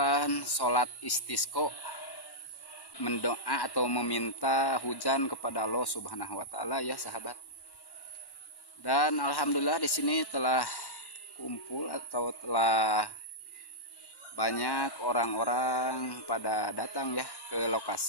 sholat istisqo, mendoa atau meminta hujan kepada Allah Subhanahu wa taala ya sahabat. Dan alhamdulillah di sini telah kumpul atau telah banyak orang-orang pada datang ya ke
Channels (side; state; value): right; late; 1.1 ms